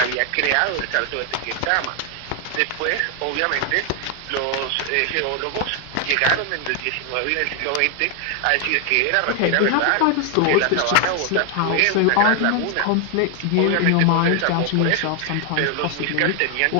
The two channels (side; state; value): both; different; correlation 0.00